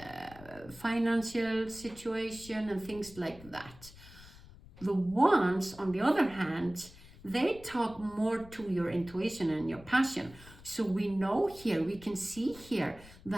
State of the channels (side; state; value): left; noise; rumble, 20 dB below the sound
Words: financial situation and things like that. The wands, on the other hand, they talk more to your intuition and your passion. So we know here, we can see here